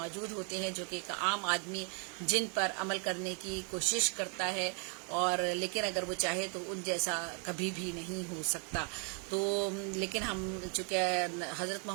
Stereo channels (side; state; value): left; quieter; 38.5 dB